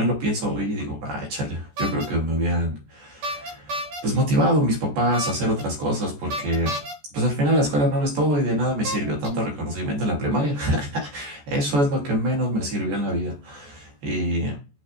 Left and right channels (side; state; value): left; late; 14 ms